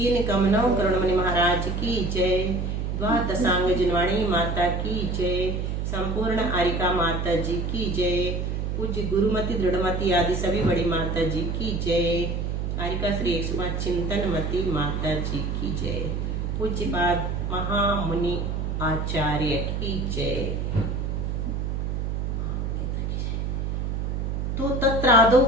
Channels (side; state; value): right; noise; hum, 1 dB below the sound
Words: कमनव करुणमणि महाराज की जय। द्वादशांग जिनवाणी माता की जय। संपूर्ण आरिका माता जी की जय। पूज्य गुरुमति दृढ़मति आदि सभी बड़ी माता जी की जय। आरिका श्री 105 चिंतनमती माता जी की जय। पूज्यपाद महामुनि आचार्य की जय। तो तत्रादौ